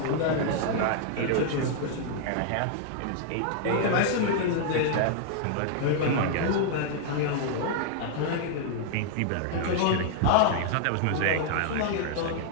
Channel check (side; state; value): both; different; correlation -0.01